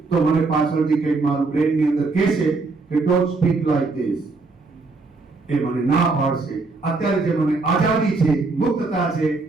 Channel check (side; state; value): left; quieter; 3.8 dB